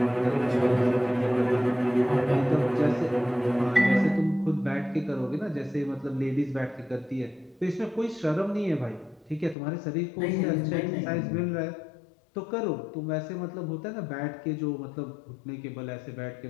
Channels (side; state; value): right; drops out; at 9.6 s